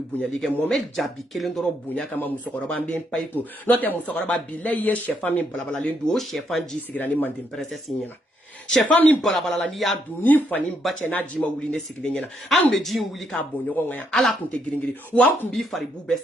bonyali kɛ Mohamed Jabi kelen dɔrɔn bonya kama musokɔrɔba n bɛ n pa i kun n'o tɛ musokɔrɔba bilayi ye sɛfan min balabalalen don o sɛfan ji sigira ni mande princesse ɲɛna Chefan min balabala ni ya du ni fani bache na jima wuli ne sigile nyena an be ji wuli ka bonyo nga ala kunte giringiri wa kun bi fari bu be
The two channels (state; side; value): normal; both; correlation 0.75